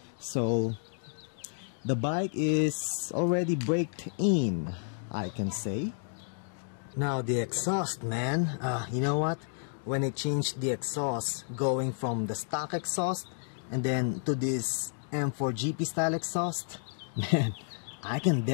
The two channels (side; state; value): right; silent; digital silence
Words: So the bike is already braked in, I can say. Now the exhaust, man. You know what? When I changed the exhaust, going from the stock exhaust and then to this M4 GP style exhaust, man, I can